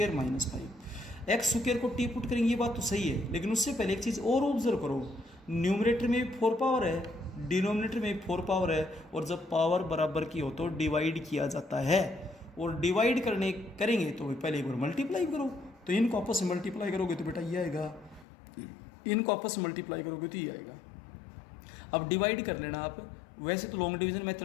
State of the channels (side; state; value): right; drops out; at 18.2 s